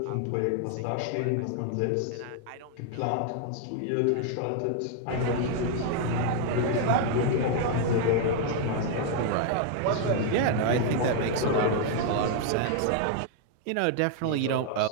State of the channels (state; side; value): different; both; correlation 0.00